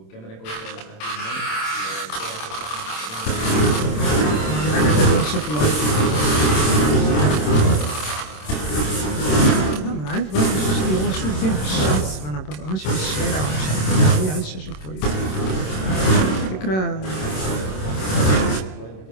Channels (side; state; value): right; late; 27 ms